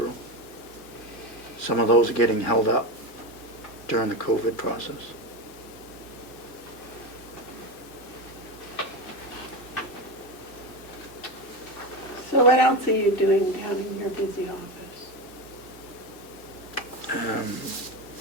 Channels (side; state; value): right; late; 2.3 ms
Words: Some of those are getting held up during the COVID process. So what else are you doing down in your busy office?